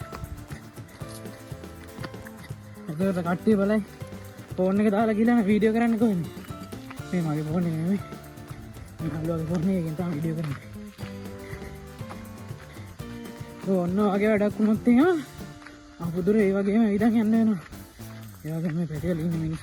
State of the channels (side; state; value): both; identical; correlation 1.00